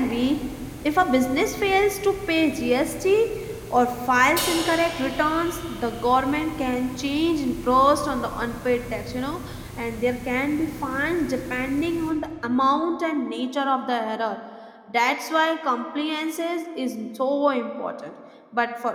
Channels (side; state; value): both; identical; correlation 1.00